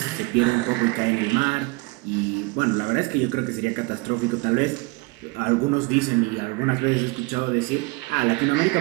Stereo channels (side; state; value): left; quieter; 25.8 dB